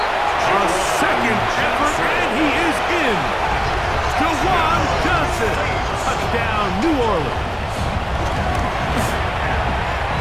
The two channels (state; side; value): identical; both; correlation 1.00